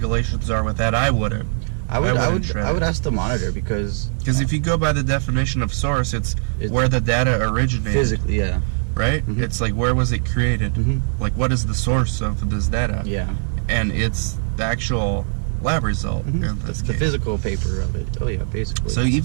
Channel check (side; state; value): left; silent; digital silence